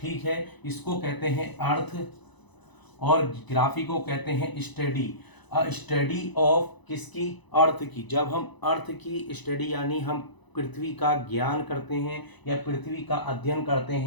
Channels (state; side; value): late; right; 1.0 ms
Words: है, इसको कहते हैं अर्थ, और ग्राफी को कहते हैं स्टडी। स्टडी ऑफ किसकी, अर्थ की। जब हम अर्थ की स्टडी यानी हम पृथ्वी का ज्ञान करते हैं या पृथ्वी का अध्ययन करते